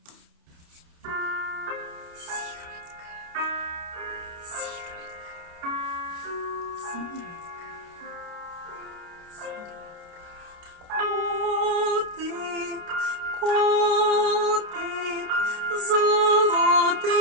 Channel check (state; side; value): late; left; 29 ms